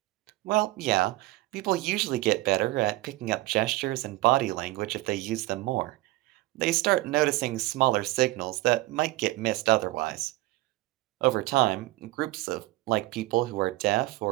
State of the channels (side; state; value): left; quieter; 18.9 dB